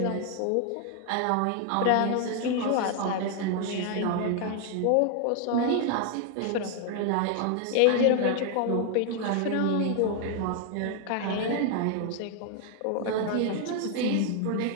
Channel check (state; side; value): different; both; correlation 0.00